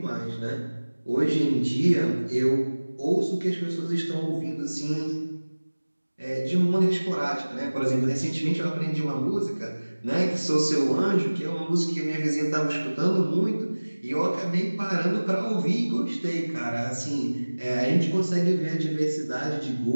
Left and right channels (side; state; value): both; inverted; correlation -1.00